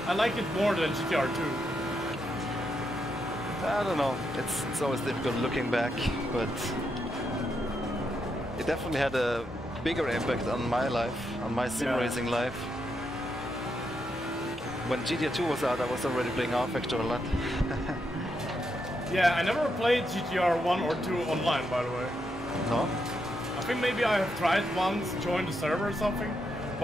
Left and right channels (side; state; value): both; normal; correlation 0.81